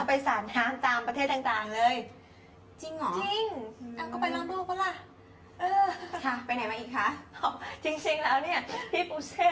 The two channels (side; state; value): both; identical; correlation 1.00